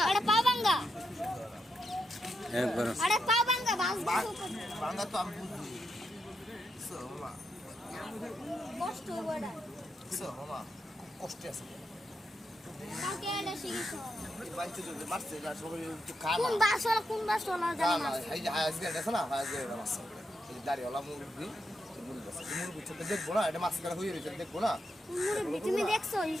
এটা পাওয়াঙ্গা একবার আরে পাওয়াঙ্গা বাংলা তো আমি বুঝি মামা কষ্ট বড়া মামা কষ্টে আছে কাকে এটা শিখিছো বাইতে তো মারছে না সবাই একটু খানা কোন বাসলা জানি না এই যে আজকে এটা না আজকে এটা মারছে এই দাড়িওয়ালা মুরগি মুরগি ছোট দেখবো না এটা মাছ কাটা হয়ে রয়েছে দেখবো না মুরগি তুমি দেখছো এই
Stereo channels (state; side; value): normal; both; correlation 0.83